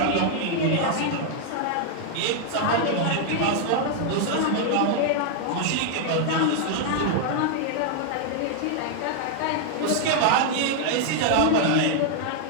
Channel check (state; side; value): different; both; correlation 0.00